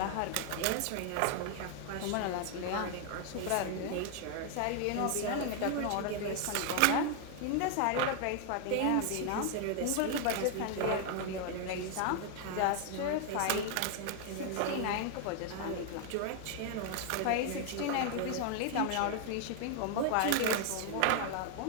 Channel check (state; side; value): different; both; correlation 0.00